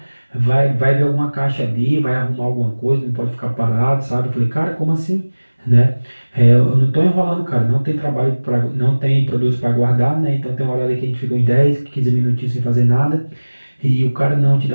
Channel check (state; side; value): inverted; both; correlation -1.00